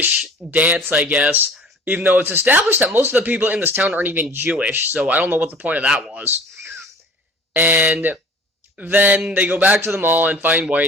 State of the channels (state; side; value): normal; both; correlation 0.46